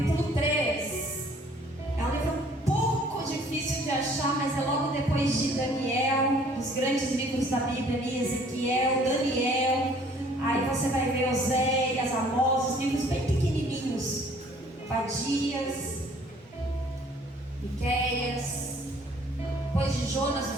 3. É um livro um pouco difícil de achar, mas é logo depois de Daniel, os grandes livros da Bíblia ali, Ezequiel, Daniel. Aí você vai ver Oséias, Amós, os livros bem pequenininhos. Obadias, Miqueias, depois de Jonas,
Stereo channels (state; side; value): normal; both; correlation 0.57